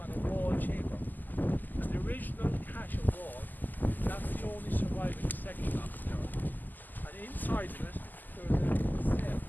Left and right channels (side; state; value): right; late; 0.086 ms